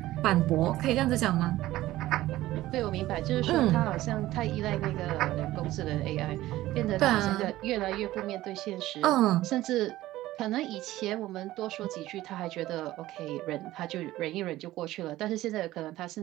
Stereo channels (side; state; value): left; quieter; 15.9 dB